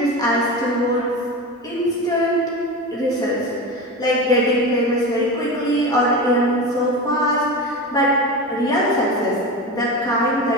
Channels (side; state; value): both; normal; correlation 0.25